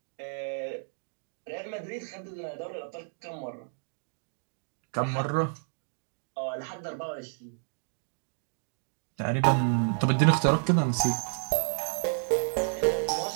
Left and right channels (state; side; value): silent; left; 57 dB below the other